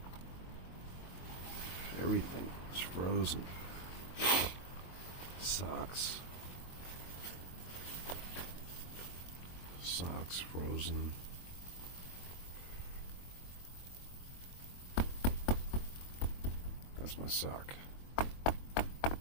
Everything is frozen. Socks frozen. That's my sock.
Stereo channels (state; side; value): late; right; 22 ms